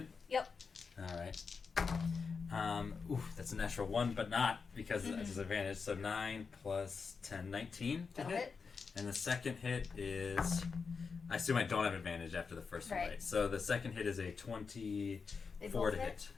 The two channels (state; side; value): quieter; right; 5.2 dB